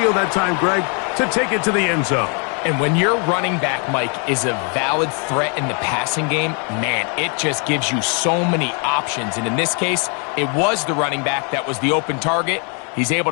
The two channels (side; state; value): right; quieter; 37.8 dB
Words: that time, Greg, to take it to the end zone. And when your running back, Mike, is a valid threat in the passing game, man, it just gives you so many options. And in this case, it was the running back that was the open target. He's able